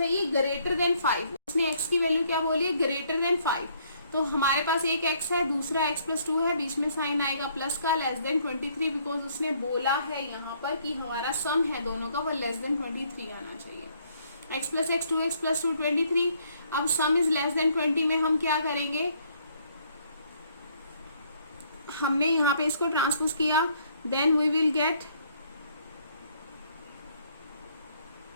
ग्रेटर देन 5. उसने x की वैल्यू क्या बोली है, ग्रेटर देन 5. तो हमारे पास एक x है, दूसरा x प्लस 2 है, बीच में साइन आएगा प्लस का, लेस देन 23, बिकॉज उसने बोला है यहाँ पर कि हमारा सम है दोनों का वो लेस देन 23 आना चाहिए। x plus x 2x plus 2 23। अब सम इज लेस देन 20 में हम क्या करेंगे, हमने यहाँ पे इसको ट्रांसपोज किया, देन वी विल गेट,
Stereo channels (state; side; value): inverted; both; correlation -0.66